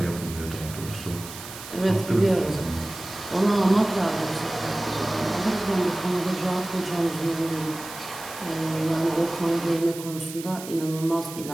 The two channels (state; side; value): noise; right; hiss, 13 dB below the sound